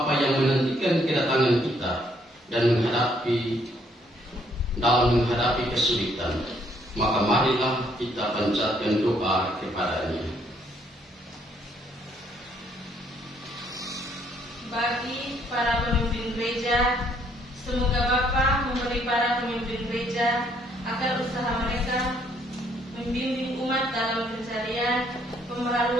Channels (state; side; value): normal; both; correlation 0.68